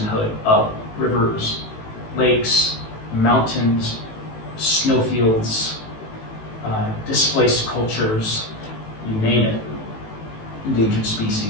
of rivers, lakes, mountains, snowfields, displaced cultures, you name it, endangered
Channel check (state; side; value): late; right; 18 ms